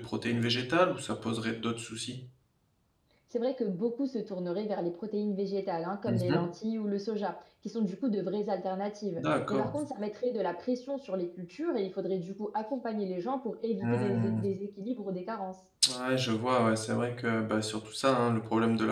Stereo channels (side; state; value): both; identical; correlation 1.00